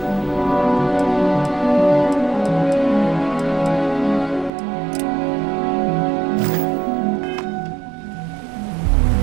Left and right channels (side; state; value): left; drops out; at 4.5 s